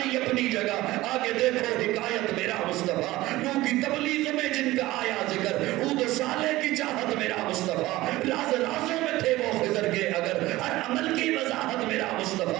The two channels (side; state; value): left; quieter; 17.8 dB